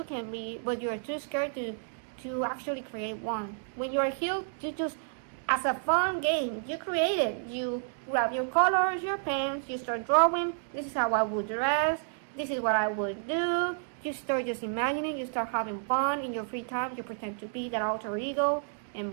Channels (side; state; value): left; silent; digital silence